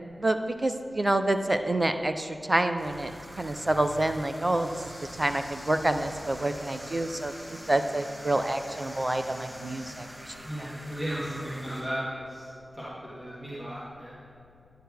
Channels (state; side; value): noise; left; rumble, 28 dB below the sound